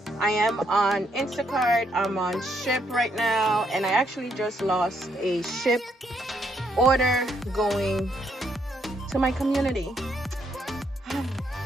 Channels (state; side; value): normal; both; correlation 0.74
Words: I am on Instacart. I'm on Ship right now, and I actually just lost a Ship order going to my community.